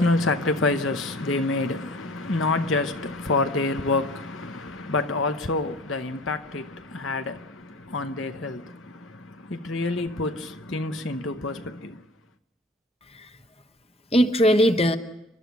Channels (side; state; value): both; normal; correlation 0.44